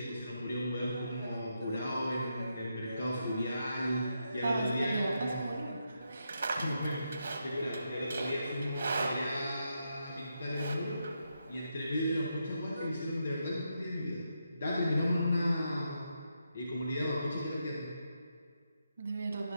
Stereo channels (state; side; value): inverted; both; correlation -0.83